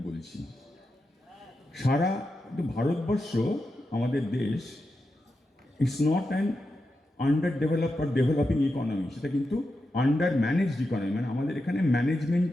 বলছি। সারা ভারতবর্ষ, আমাদের দেশ, it's not an under develop R developing economy, সেটা কিন্তু আন্ডার ম্যানেজড ইকোনমি, মানে আমাদের এখানে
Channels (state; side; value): normal; both; correlation 0.88